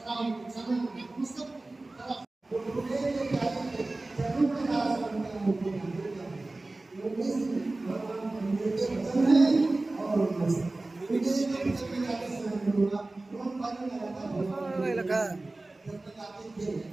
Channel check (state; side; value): quieter; left; 3.0 dB